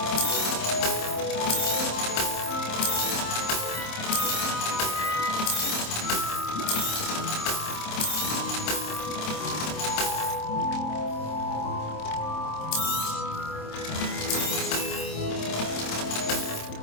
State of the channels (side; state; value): right; late; 26 ms